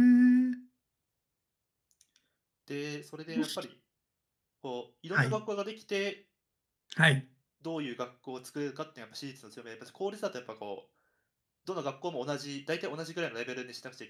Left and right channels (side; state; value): both; identical; correlation 1.00